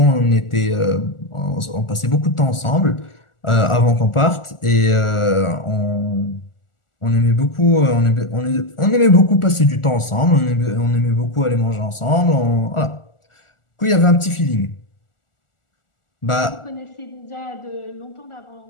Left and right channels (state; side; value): late; right; 1.4 ms